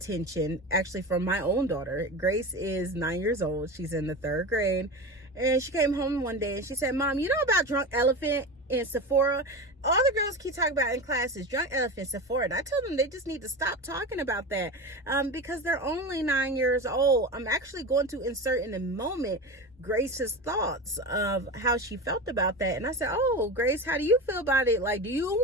actually from my own daughter. Grace is 9 years old. She's in the 3rd grade. And she came home one day and she said, "Mom, you know about Drunk Elephant and Sephora? All the girls keep talking about in class is Drunk Elephant, Sephora." And I told them they just need to stop talking about that because they're only 9 years old. I'm actually going to insert in a moment Grace's thoughts of how she felt about that. And I said, "Oh, Grace, how do you feel about it? Like, do you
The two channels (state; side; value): normal; both; correlation 0.26